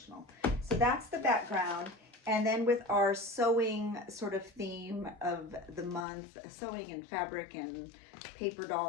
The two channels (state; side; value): drops out; right; at 6.1 s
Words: So that's the background. And then with our sewing sort of theme of the month, sewing and fabric and paper